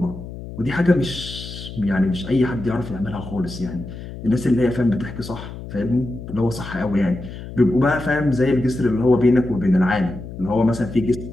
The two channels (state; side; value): noise; left; hum, 11 dB below the sound